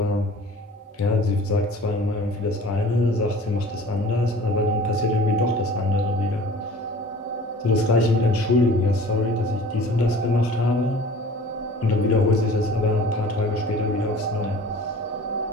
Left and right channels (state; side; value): normal; both; correlation 0.45